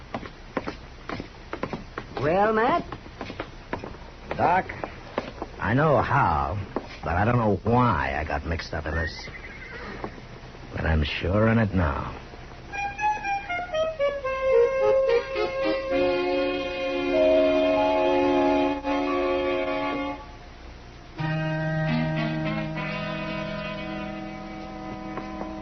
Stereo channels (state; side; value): identical; both; correlation 1.00